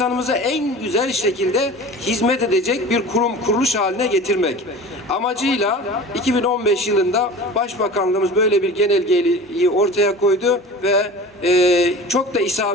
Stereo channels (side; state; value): both; normal; correlation 0.37